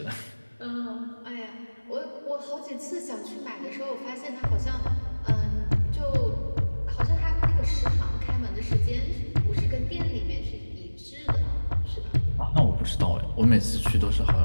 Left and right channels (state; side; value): inverted; both; correlation -1.00